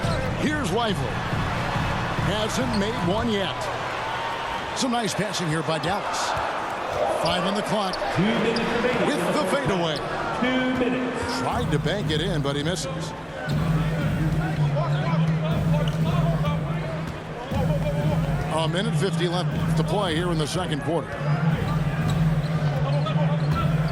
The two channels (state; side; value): identical; both; correlation 1.00